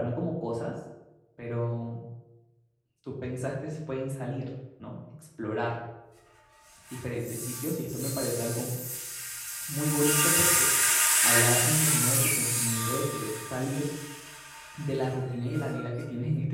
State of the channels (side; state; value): both; identical; correlation 1.00